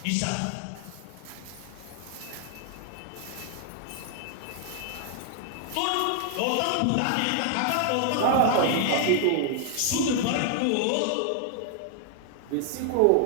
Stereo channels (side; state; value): both; different; correlation 0.00